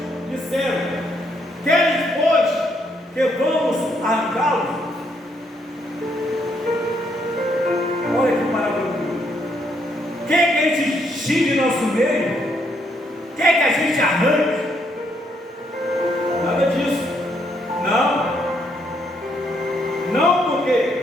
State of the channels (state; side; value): normal; both; correlation 0.73